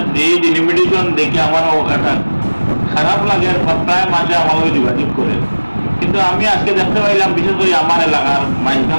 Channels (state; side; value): inverted; both; correlation -1.00